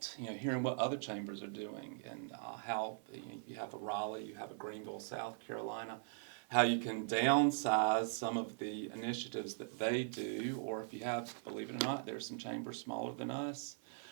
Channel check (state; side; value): silent; left; 51 dB below the other